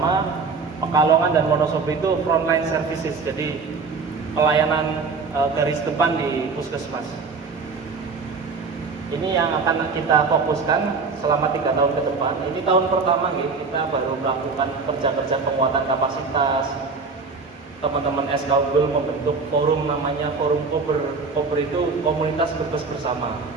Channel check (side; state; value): left; quieter; 4.6 dB